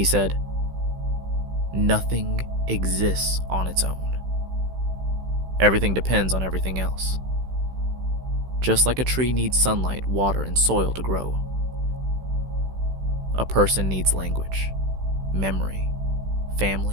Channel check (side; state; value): left; late; 16 ms